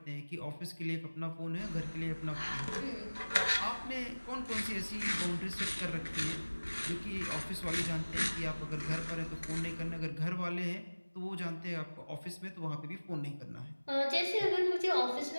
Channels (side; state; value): both; inverted; correlation -1.00